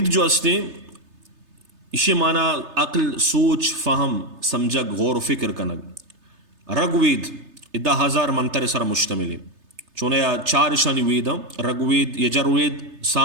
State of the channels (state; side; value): late; left; 3.3 ms